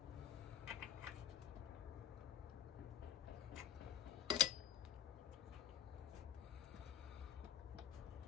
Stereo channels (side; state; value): right; quieter; 10.3 dB